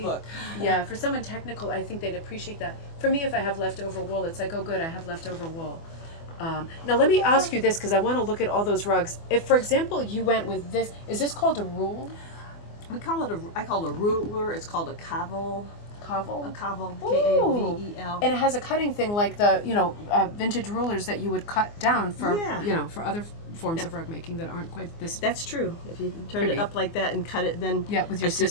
book. Yeah, for someone technical, I think they'd appreciate that. For me, if I have leftover wool, it's like, oh, good, I have leftover wool. Now, let me ask you this because I want to look at all those rugs. If, for example, you went with this, is this called a rule? I call it a ruler. It's called a kavel. Kavel? A Kavel, Ooh. K-A-V-E-L. And it has a cutting thing like the, vintage rulers that you would cut down for, Yeah. For other forms of rug making that aren't quite this. That's true. If you turn Pretty. it up like that and cut it, then With your like the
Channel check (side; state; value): right; late; 24 ms